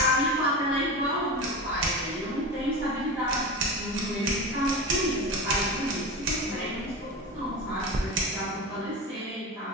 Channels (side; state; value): both; normal; correlation 0.26